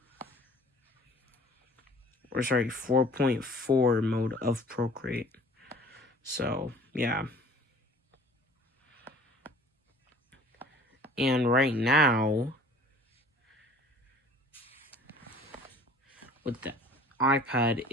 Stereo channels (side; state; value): both; normal; correlation 0.50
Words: Or sorry, 4.4 mode of Procreate. So, yeah. And right now, with the iPad,